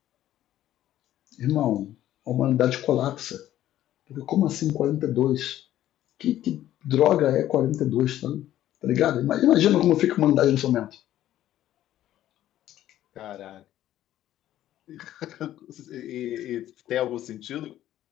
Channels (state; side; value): quieter; right; 12.9 dB